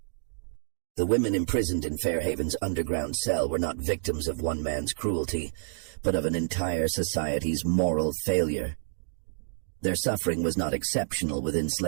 The women imprisoned in Fairhaven's underground cell were not victims of one man's cruelty, but of an entire society's moral failure. Their suffering was not exceptional within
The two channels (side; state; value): left; silent; digital silence